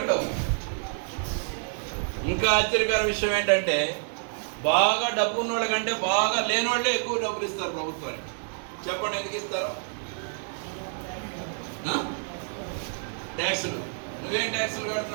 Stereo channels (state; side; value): silent; left; 55 dB below the other